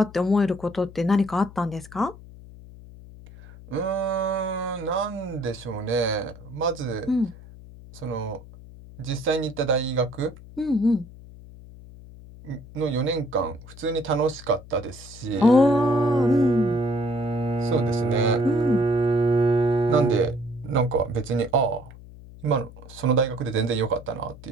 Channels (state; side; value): noise; left; hum, 18 dB below the sound